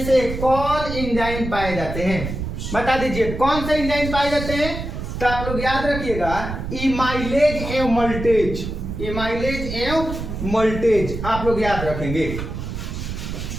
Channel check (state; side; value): noise; right; rumble, 6 dB below the sound